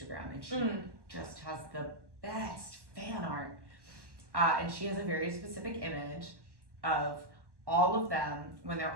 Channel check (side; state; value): left; late; 1.1 ms